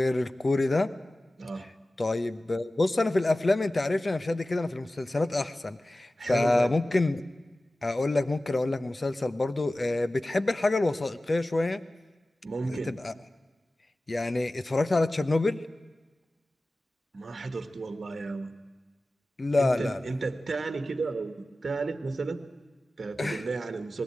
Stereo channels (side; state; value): both; normal; correlation 0.96